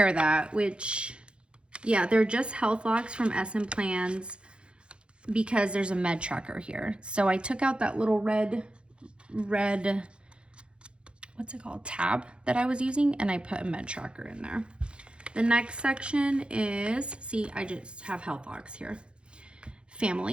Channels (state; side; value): late; left; 0.056 ms